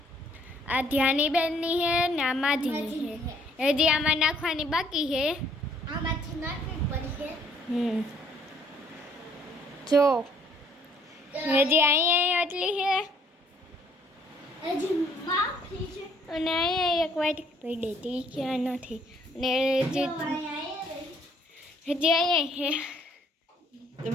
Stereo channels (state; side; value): normal; both; correlation 0.64